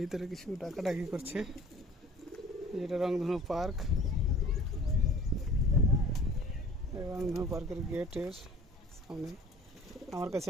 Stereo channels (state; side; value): normal; both; correlation 0.48